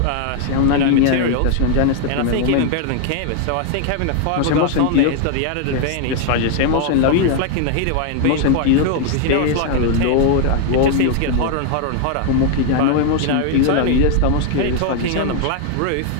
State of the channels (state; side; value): different; both; correlation 0.00